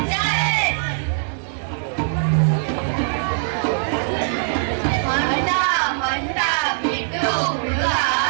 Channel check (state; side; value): silent; left; 65 dB below the other